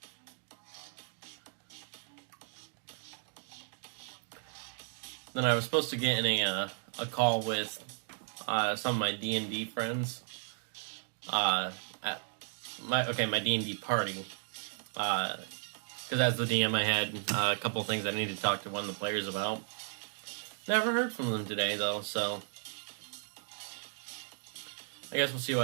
then I was supposed to get in a call with some of my D&D friends. At my D&D party. Because as the DM, I had a couple things I needed to talk to one of the players about. Never heard from them today, though, so I guess we'll see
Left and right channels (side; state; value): left; silent; 55 dB below the other